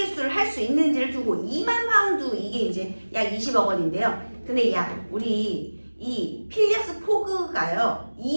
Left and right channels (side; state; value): both; inverted; correlation -1.00